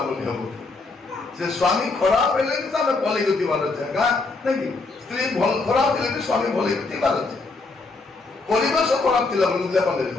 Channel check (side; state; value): right; quieter; 3.7 dB